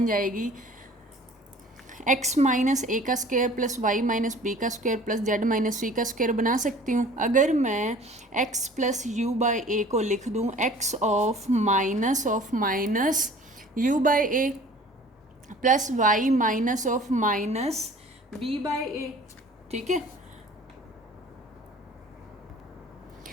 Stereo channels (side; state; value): both; normal; correlation 0.48